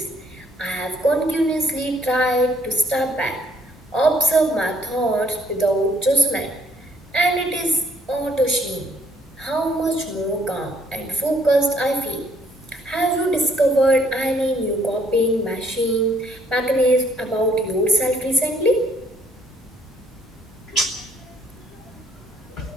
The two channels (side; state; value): both; normal; correlation 0.65